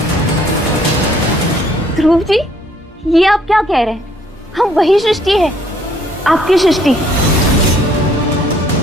ध्रुव जी, ये आप क्या कह रहे हैं? हम वही सृष्टि है, आपकी सृष्टि,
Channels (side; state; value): both; normal; correlation 0.63